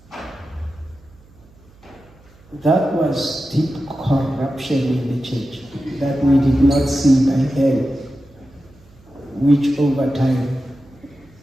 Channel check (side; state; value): right; noise; hum, 27 dB below the sound